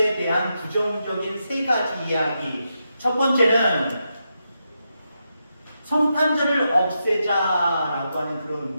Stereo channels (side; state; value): both; inverted; correlation -0.85